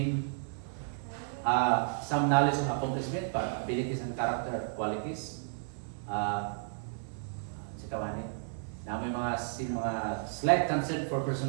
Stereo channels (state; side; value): silent; left; 55 dB below the other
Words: Some knowledge of accomplishment, abilities and character qualities. Si Kawanin. Na may mga slight concern for